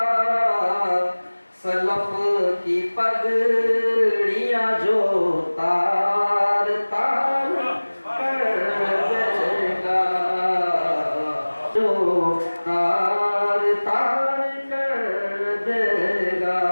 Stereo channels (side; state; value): both; inverted; correlation -1.00